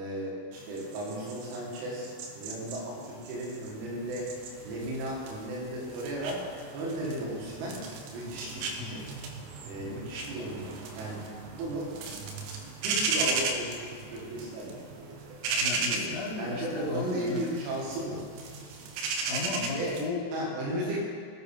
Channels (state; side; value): late; left; 28 ms